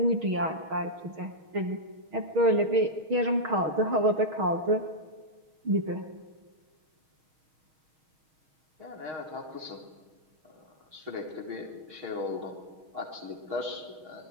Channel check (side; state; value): left; late; 6.4 ms